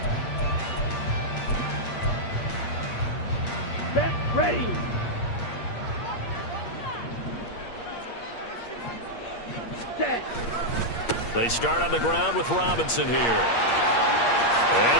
Set, ready. Set. They start on the ground with Robinson here.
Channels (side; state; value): right; late; 8.5 ms